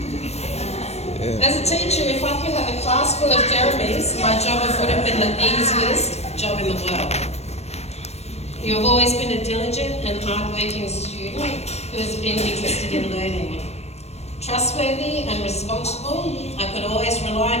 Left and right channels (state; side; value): late; right; 0.31 ms